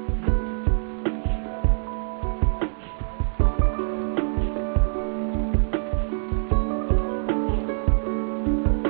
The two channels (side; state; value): left; silent; digital silence